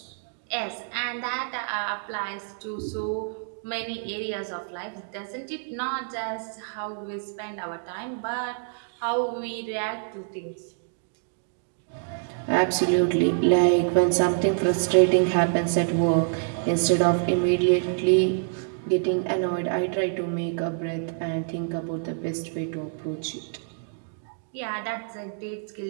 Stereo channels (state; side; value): silent; left; digital silence